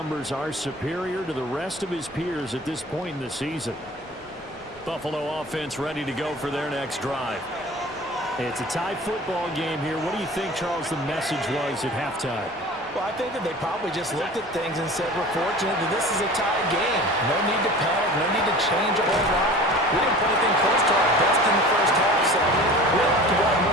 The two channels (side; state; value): both; normal; correlation 0.40